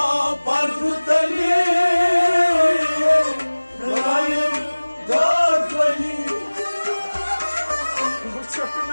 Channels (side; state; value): both; inverted; correlation -1.00